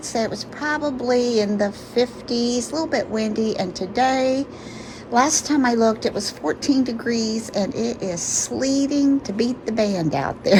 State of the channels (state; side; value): identical; both; correlation 1.00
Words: say it was probably in the 50s, a little bit windy, and today last time I looked, it was 14 degrees and it is sleeting to beat the band out